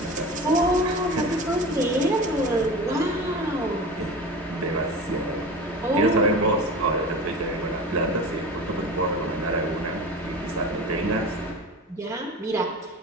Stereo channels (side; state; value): both; normal; correlation 0.33